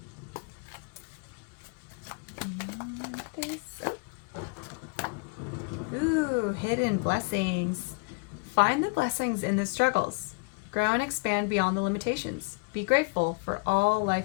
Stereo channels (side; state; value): right; quieter; 31.4 dB